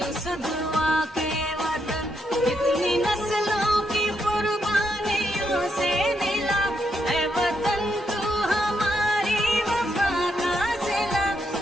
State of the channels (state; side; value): normal; both; correlation 0.79